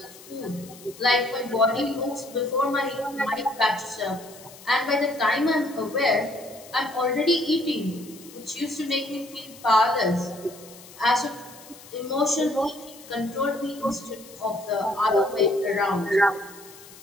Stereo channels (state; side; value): noise; left; hiss, 19 dB below the sound